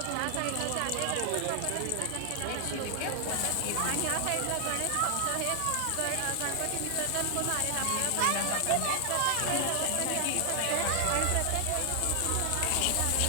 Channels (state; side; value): different; both; correlation 0.00